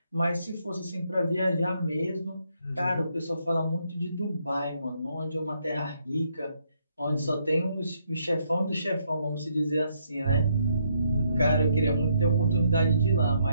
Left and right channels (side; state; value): both; inverted; correlation -0.73